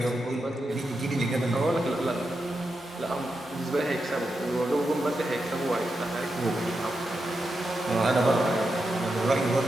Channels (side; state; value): both; normal; correlation 0.87